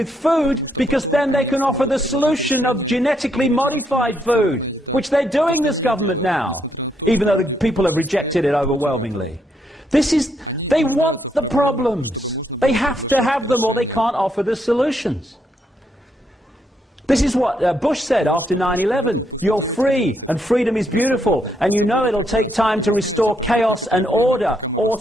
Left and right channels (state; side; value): normal; both; correlation 0.76